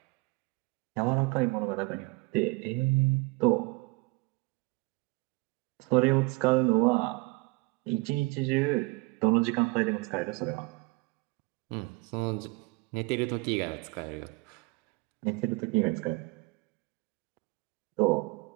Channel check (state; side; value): quieter; left; 25.5 dB